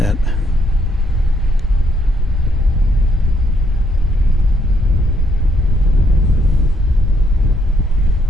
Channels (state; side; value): normal; both; correlation 0.73